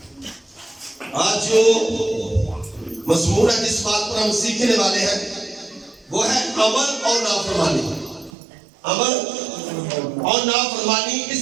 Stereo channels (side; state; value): left; drops out; at 8.3 s